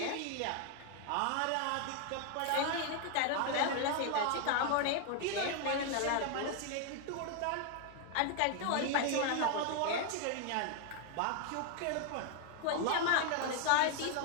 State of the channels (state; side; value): different; both; correlation 0.01